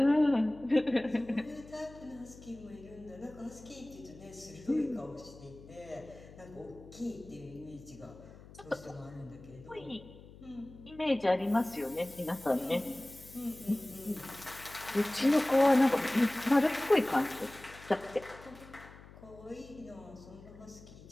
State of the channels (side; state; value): left; noise; hum, 19 dB below the sound